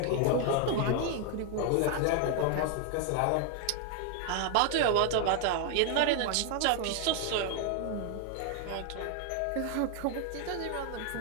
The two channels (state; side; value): different; both; correlation 0.00